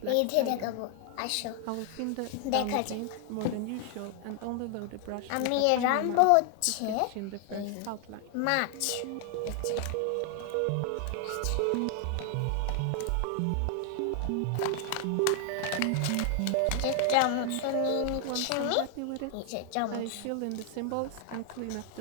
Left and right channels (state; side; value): different; both; correlation 0.00